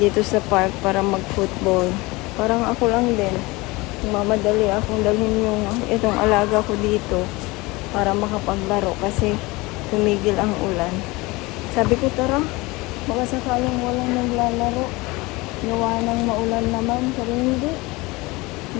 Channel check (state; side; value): quieter; right; 23.0 dB